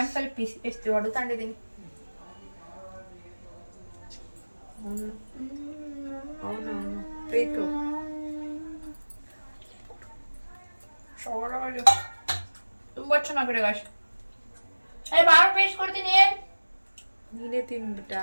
ಪೀಸ್ ಎಷ್ಟು ಹೊಡೆತಾಂಡಿದ್ದೀನಿ. ಪ್ರೀತು ತುಂಬಾ ಚೆನ್ನಾಗಿದೆ ಗಾಶ್. ಬಾಳ ಪೇಸ್ಟ್ ಕೊಡ್ತೀನಿ. ನೀನೇ ತಿನ್ಬಿಟ್ಟ,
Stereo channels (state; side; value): inverted; both; correlation -1.00